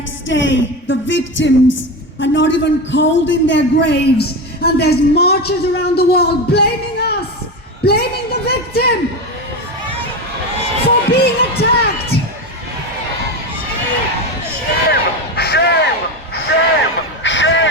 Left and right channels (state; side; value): normal; both; correlation 0.20